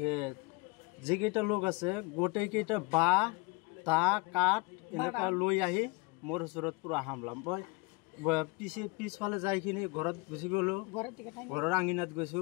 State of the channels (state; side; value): quieter; right; 26.7 dB